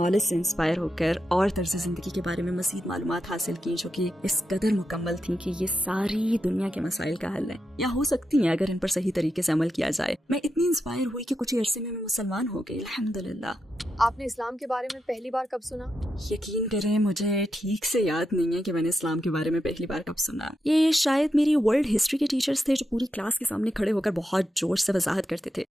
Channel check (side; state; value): both; normal; correlation 0.86